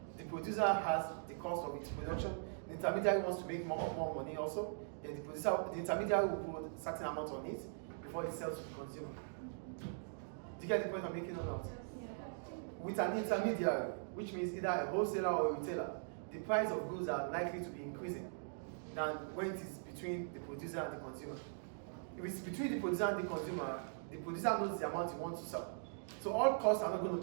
the producer has the cost of its production. The intermediary wants to make more money also. Then the intermediary will put a certain amount on it before it sells to the consumer. Do you get the point I'm making or not? Yeah. With an intermediary, which means either a wholesaler or a retailer, the price of goods are likely to be increasing than when it is between the producer and the consumer. If it's between the producer and the consumer, the producer knows the amount he wants to sell. So all costs are not going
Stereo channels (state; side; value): silent; left; digital silence